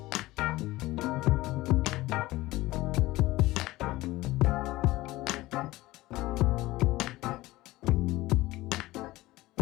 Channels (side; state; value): right; quieter; 18.5 dB